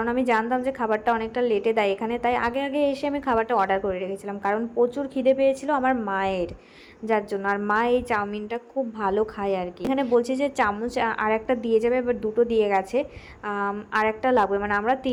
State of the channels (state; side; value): identical; both; correlation 1.00